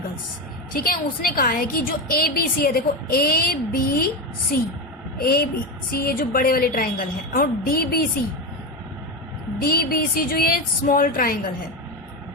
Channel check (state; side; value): normal; both; correlation 0.16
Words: ठीक है, उसने कहा है कि जो ABC है, देखो ABC ये जो बड़े वाले ट्राइंगल है, और DBC जो ये स्मॉल ट्राइंगल है,